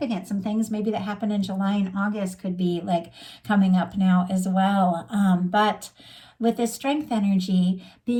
Some things maybe that happened in July and August could be like coming up now as well. But with this Strength energy,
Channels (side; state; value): both; identical; correlation 1.00